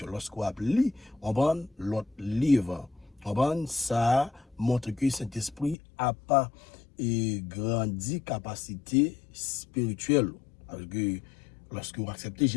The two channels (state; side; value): drops out; right; at 5.8 s